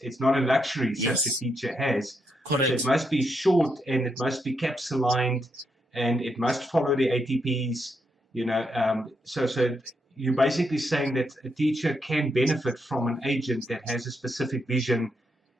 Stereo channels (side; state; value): both; normal; correlation 0.80